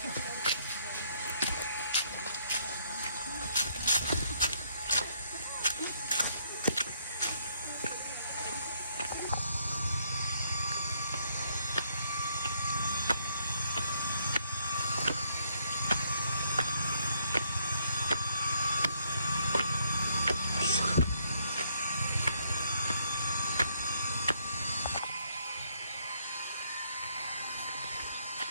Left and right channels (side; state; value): both; inverted; correlation -0.70